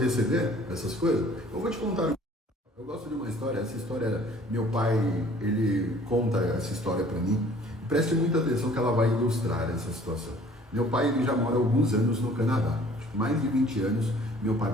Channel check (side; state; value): both; normal; correlation 0.53